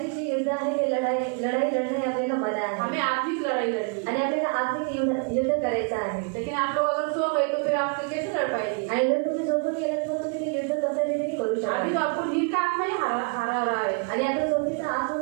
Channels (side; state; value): left; quieter; 38.1 dB